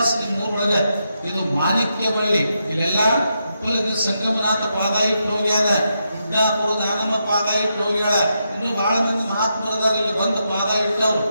ನಿಮ್ಮೂರೊಳಗ. ಇದು ಮಾಣಿಕ್ಯ ಬಳ್ಳಿ, ಇಲ್ಲೆಲ್ಲ ಉಪ್ಪಲಗಿ ಸಂಗಮನಾಥ ಪಾದ ಇಟ್ಟು ಹೋಗ್ಯಾರ, ಗುಡ್ಡಾಪುರ ದಾನಮ್ಮ ಪಾದ ಇಟ್ಟು ಹೋಗ್ಯಾಳ, ಇನ್ನು ಬಹಳ ಮಂದಿ ಮಹಾತ್ಮರದಾರ ಇಲ್ಲಿ ಬಂದು ಪಾದ ಇಟ್ಟವ್ರು.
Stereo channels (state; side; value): inverted; both; correlation -0.83